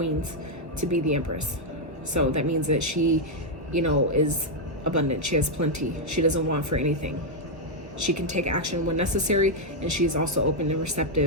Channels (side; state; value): left; late; 1.2 ms